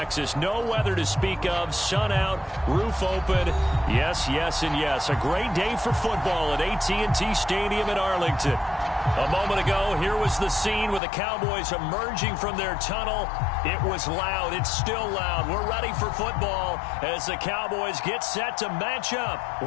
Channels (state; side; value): drops out; right; at 11.0 s